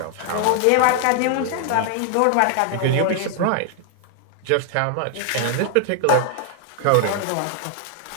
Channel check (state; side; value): different; both; correlation 0.00